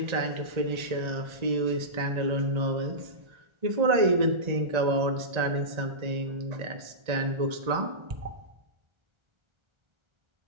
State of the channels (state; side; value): late; left; 1.9 ms